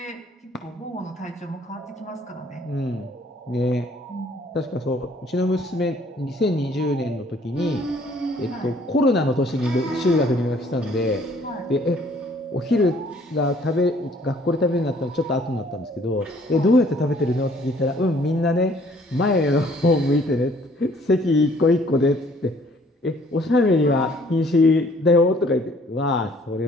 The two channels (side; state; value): both; normal; correlation 0.59